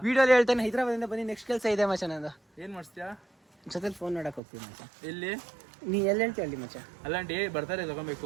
ವಿಡಿಯೋಲಿ ಹೇಳ್ತೇನೆ, ಹೈದರಾಬಾದಿಂದ ಬಂದು ನೆಕ್ಸ್ಟ್ ಕೆಲಸ ಇದೆ ಮಚ್ಚ. ನಂದು ಏನ್ ಮಾಡ್ತೀಯಾ? ಜೊತೆಲಿ ಫೋನ್ ನೋಡಕ್ ಹೋಗ್ತೀನಿ ಮಚ್ಚ. ಎಲ್ಲಿ? ನೀ ಎಲ್ಲಿ ಹೇಳ್ತೀಯ ಅಲ್ಲಿ ಮಚ್ಚ. ಅಲ್ಲಂಟಿ ಬರ್ತಾರೆ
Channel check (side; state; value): left; drops out; at 4.4 s